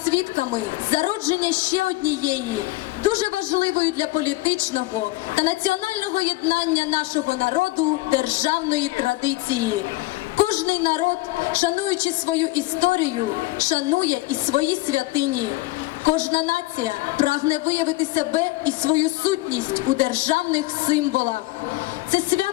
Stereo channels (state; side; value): quieter; right; 20.1 dB